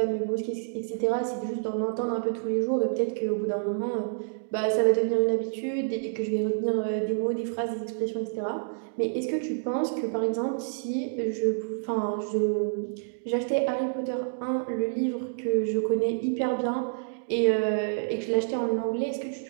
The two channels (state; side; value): silent; left; digital silence